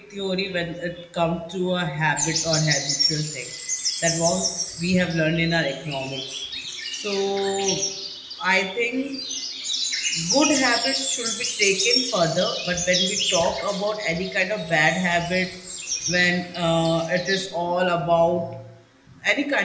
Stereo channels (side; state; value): both; identical; correlation 1.00